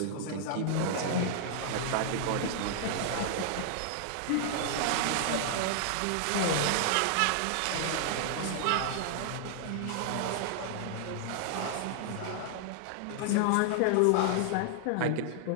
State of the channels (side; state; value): both; different; correlation -0.01